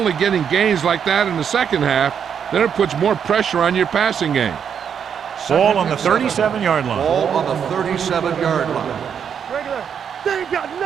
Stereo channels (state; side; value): quieter; left; 7.7 dB